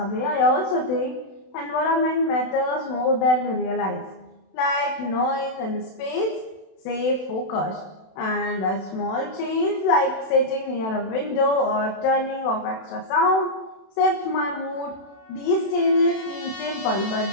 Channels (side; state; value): right; late; 32 ms